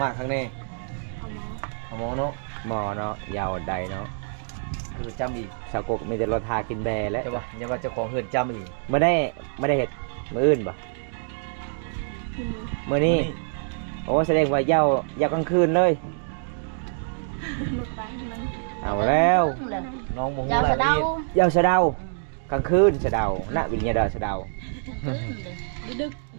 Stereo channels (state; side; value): silent; left; digital silence